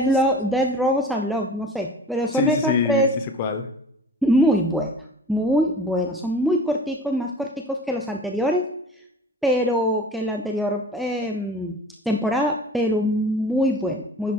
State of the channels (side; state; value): both; normal; correlation 0.42